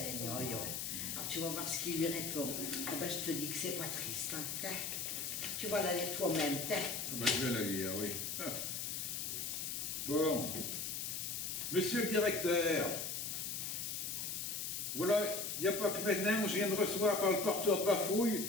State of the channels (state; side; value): noise; left; hiss, 3 dB below the sound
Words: Alors tu vas voir ce qu'il lui répond. Ah ben, je te dis que c'est pas triste. Hein. Tu vas la lire toi-même. Ben, je vais la lire, oui. Ah. Bon. Monsieur le directeur, voilà, il n'y a pas que maintenant, je viens de recevoir par le porteur de Bafouille